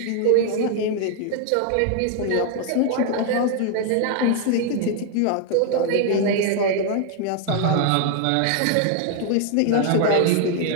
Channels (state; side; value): different; both; correlation 0.00